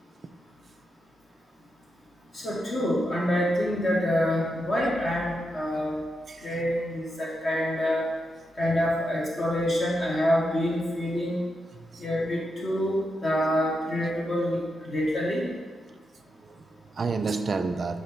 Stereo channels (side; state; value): both; normal; correlation 0.85